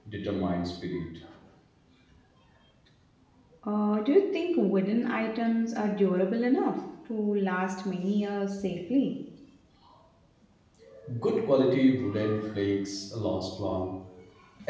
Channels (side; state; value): both; identical; correlation 1.00